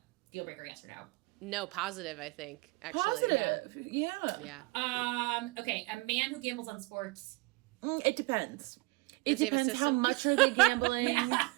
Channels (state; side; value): quieter; left; 24.9 dB